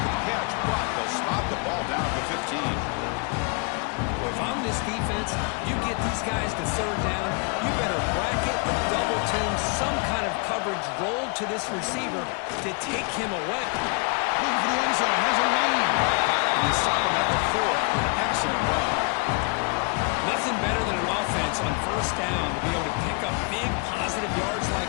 the catch, but they'll stop the ball down at the 15. Well, if I'm this defense, you get these guys to 3rd down, you better bracket or double team some kind of coverage rolled to this receiver to take him away. Looking for the end zone, has a lane. And they stop him at the 4 for an excellent run. Nothing better than an offense on 1st down to be able to pick up big positive yards like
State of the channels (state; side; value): quieter; right; 34.3 dB